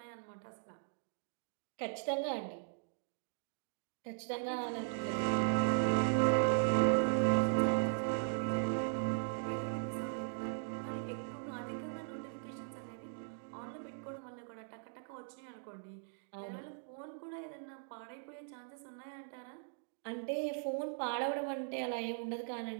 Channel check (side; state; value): left; silent; digital silence